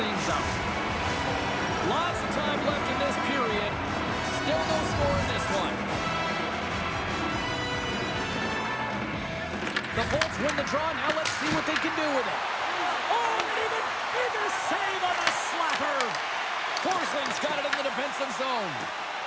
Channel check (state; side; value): identical; both; correlation 1.00